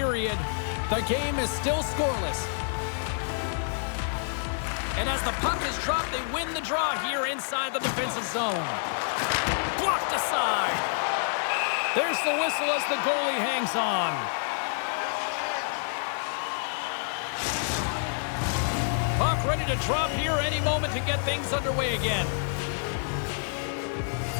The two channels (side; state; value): right; silent; digital silence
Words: the game is still scoreless. And as the puck is dropped, they win the draw here inside the defensive zone. Blocked aside. There's the whistle as the goalie hangs on. Puck ready to drop here any moment to get things underway again.